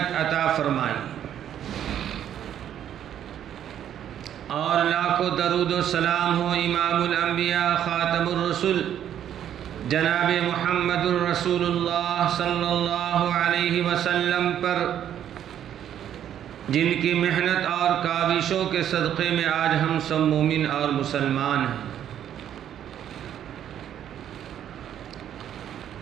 عطا فرمائی، اور لاکھوں درود و سلام ہو امام الانبیاء خاتم الرسل جناب محمد الرسول اللہ صلی اللہ علیہ وسلم پر، جن کی محنت اور کاوشوں کے صدقے میں آج ہم سب مومن اور مسلمان ہیں۔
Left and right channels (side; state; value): left; quieter; 10.2 dB